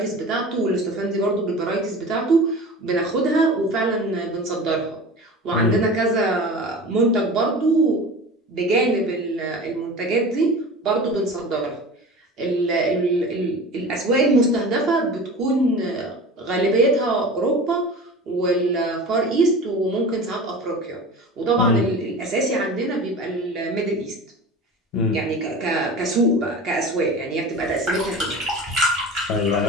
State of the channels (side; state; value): both; normal; correlation 0.35